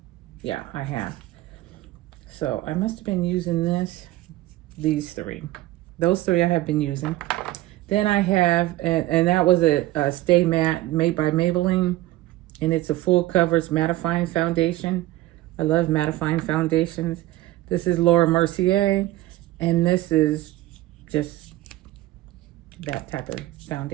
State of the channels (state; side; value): quieter; left; 16.6 dB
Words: Yeah, I have. So I must have been using these three. Those three I have been using. Then I have, and that was a Stay Matte made by Maybelline. And it's a full coverage mattifying foundation. I love mattifying foundations. This is Laura Mercier. And this is just that type of